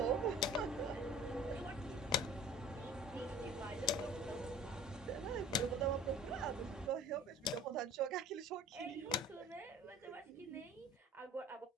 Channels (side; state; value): both; normal; correlation 0.45